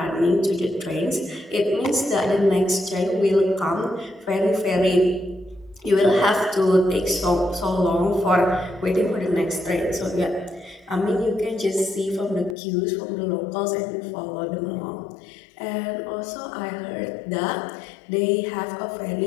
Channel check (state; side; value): drops out; right; at 12.6 s